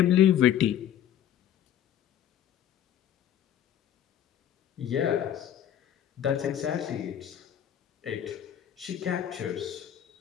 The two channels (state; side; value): quieter; right; 10.5 dB